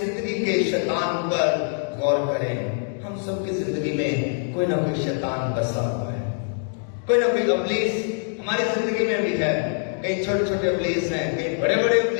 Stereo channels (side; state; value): right; silent; 63 dB below the other